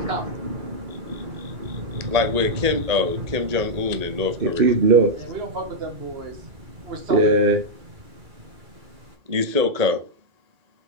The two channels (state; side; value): late; left; 1.8 ms